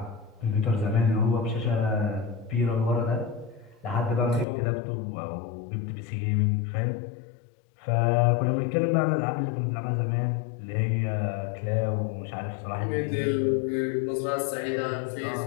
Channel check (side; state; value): right; drops out; at 4.5 s